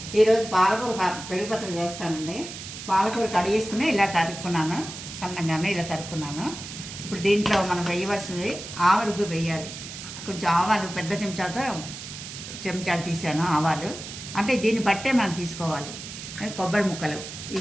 ఈరోజు పాలకూర పెరుగు పచ్చడి చేస్తానండి. పాలకూర కడిగేసుకుని ఇలా తరుక్కున్నాను, సన్నగానే ఇలా తరుక్కున్నాను. ఇప్పుడు దీంట్లో మనం వేయవలసినవి ఆవరుగు వేయాలి. కొంచెం ఆవాలు పెద్ద చెంచాడు తీసాను ఆవాలు, అంటే దీన్ని బట్టే మనం తీసుకోవాలి. కొబ్బరి ముక్కలు,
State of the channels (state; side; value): noise; right; hiss, 11 dB below the sound